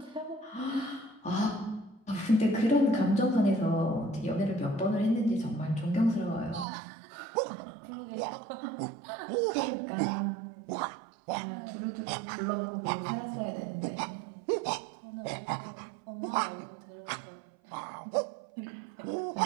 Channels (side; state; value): left; drops out; at 6.7 s